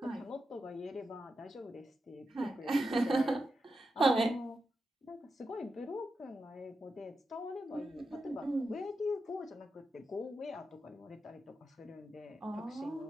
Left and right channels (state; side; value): normal; both; correlation 0.88